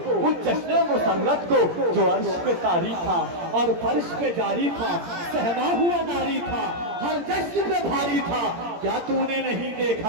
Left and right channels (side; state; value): left; late; 17 ms